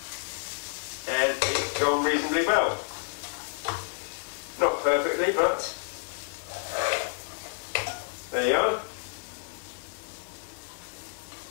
And it's gone reasonably well. Not perfectly, but there you are.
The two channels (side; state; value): right; silent; digital silence